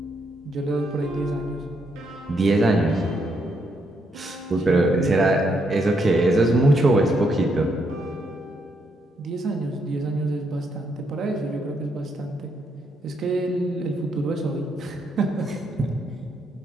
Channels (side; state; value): both; normal; correlation 0.76